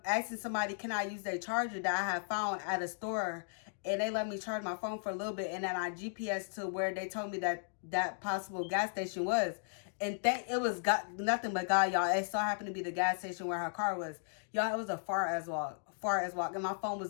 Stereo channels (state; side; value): silent; right; digital silence